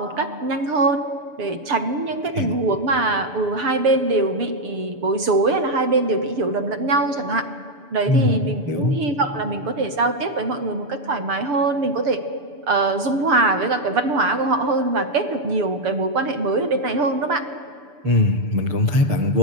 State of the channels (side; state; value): left; late; 6.9 ms